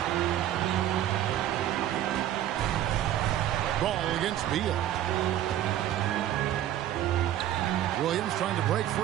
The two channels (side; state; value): left; quieter; 12.1 dB